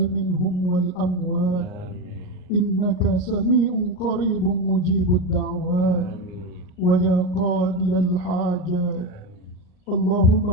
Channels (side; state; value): right; late; 38 ms